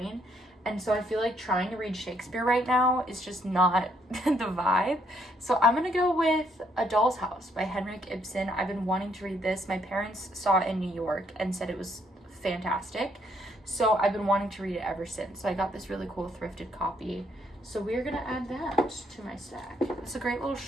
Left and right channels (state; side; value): normal; both; correlation 0.70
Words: And so I feel like trying to read Shakespeare right now is just not the vibe. So I'm going to go with A Doll's House by Henrik Ibsen. I've been wanting to read this. My parents saw it in New York and said it was fantastic. So I've been wanting to read it ever since. So I got this really cool thrifted copy. So we're going to add that to my stack. It's a great little